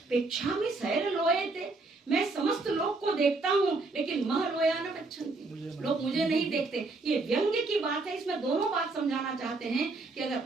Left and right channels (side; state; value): left; quieter; 3.5 dB